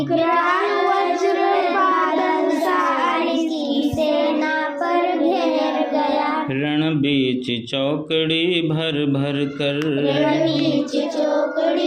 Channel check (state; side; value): identical; both; correlation 1.00